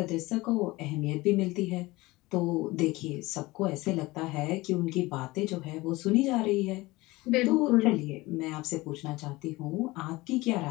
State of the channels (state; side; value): quieter; right; 20.8 dB